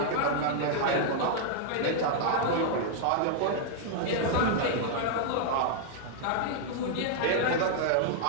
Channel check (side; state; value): both; different; correlation -0.01